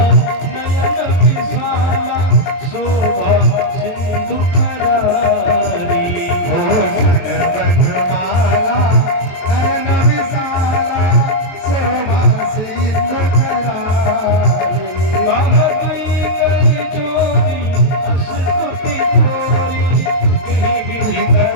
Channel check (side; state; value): right; late; 22 ms